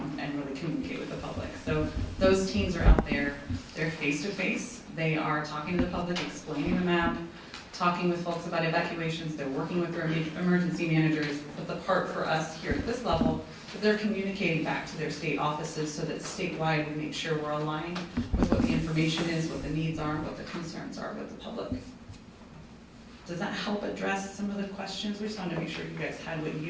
and really communicate with the public. So those teams are out there, they're face-to-face, they are talking to the public, explaining the map, talking with folks about evacuations, they're working with their emergency managers, but the part for us here at this level is they're communicating back to their state offices so that statewide we make sure we're aligned with what the information is, what the needs are, what the concerns are with the public. Does that help address some of the questions? We just wanted to make sure you guys had what you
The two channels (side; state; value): both; identical; correlation 1.00